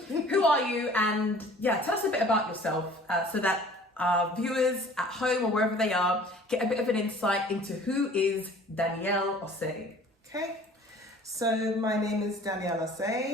are you? And yeah, tell us a bit about yourself so that our viewers at home or wherever they are get a bit of an insight into who is Danielle Osei. Okay, so my name is Danielle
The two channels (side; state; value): both; normal; correlation 0.49